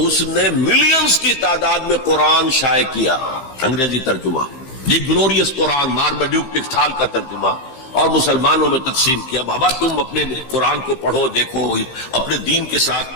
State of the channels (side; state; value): right; late; 15 ms